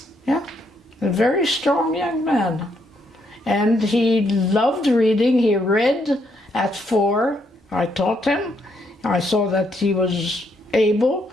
Yeah, a very strong young man. And he loved reading. He read at 4. I taught him. I saw that he was able.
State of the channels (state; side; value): normal; both; correlation 0.74